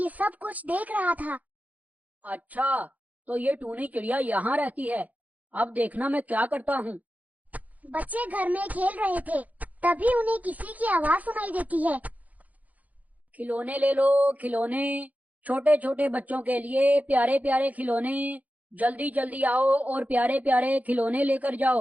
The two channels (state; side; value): late; left; 0.076 ms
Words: सब कुछ देख रहा था। अच्छा, तो ये टूनी चिड़िया यहाँ रहती है। अब देखना मैं क्या करता हूँ। बच्चे घर में खेल रहे थे, तभी उन्हें किसी की आवाज सुनाई देती है। खिलौने ले लो खिलौने, छोटे छोटे बच्चों के लिए प्यारे प्यारे खिलौने। जल्दी जल्दी आओ और प्यारे प्यारे खिलौने लेकर